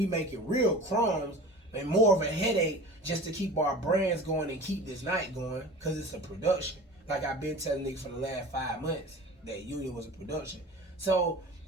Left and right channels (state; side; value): normal; both; correlation 0.38